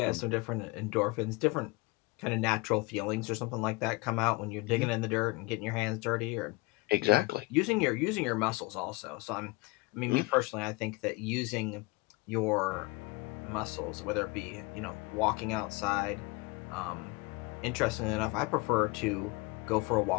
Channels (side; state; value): right; quieter; 24.7 dB